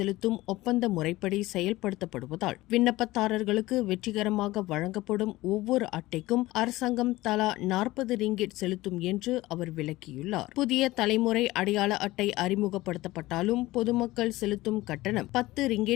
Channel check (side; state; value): right; quieter; 18.3 dB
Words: ஒப்பந்த முறைப்படி செயல்படுத்தப்படுவதால் விண்ணப்பதாரர்களுக்கு வெற்றிகரமாக வழங்கப்படும் ஒவ்வொரு அட்டைக்கும் அரசாங்கம் தலா 40 ரிங்கிட் செலுத்தும் என்று அவர் விளக்கியுள்ளார். புதிய தலைமுறை அடையாள அட்டை அறிமுகப்படுத்தப்பட்டாலும் பொதுமக்கள் செலுத்தும் கட்டணம் 10